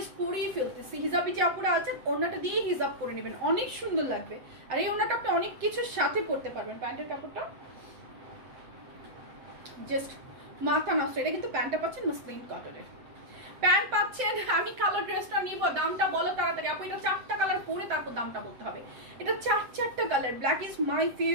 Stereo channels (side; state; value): left; late; 7.8 ms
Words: ফেলতেছি। হিজাবি যে আপুরা আছেন ওড়নাটা দিয়ে হিজাব করে নেবেন, অনেক সুন্দর লাগবে। আর এই ওড়নাটা আপনি অনেক কিছুর সাথে পরতে পারবেন। প্যান্টের কাপড়টা জাস্ট মাথা নষ্ট। এটা কিন্তু প্যান্টটা পাচ্ছেন মসলিন কটনের প্যান্ট পাচ্ছেন। আমি কালো ড্রেসটা নিব, দামটা বলো তাড়াতাড়ি আপু। এটা 4টা কালার পরে তারপর দামটা বলতে হবে। এটা 4টা colour, black is my